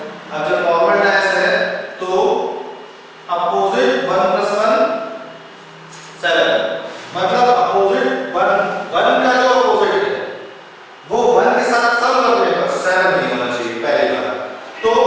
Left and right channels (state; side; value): identical; both; correlation 1.00